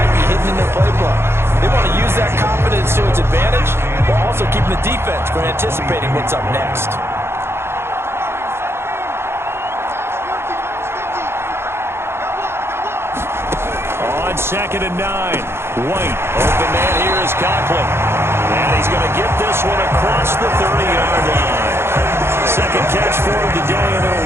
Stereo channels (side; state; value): left; late; 0.12 ms